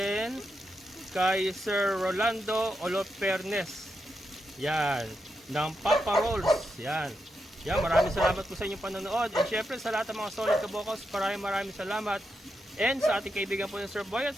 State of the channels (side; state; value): both; normal; correlation 0.85